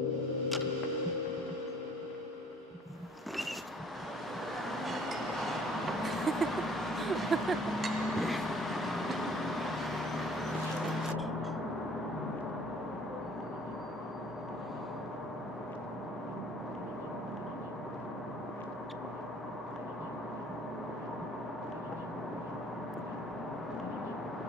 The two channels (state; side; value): normal; both; correlation 0.56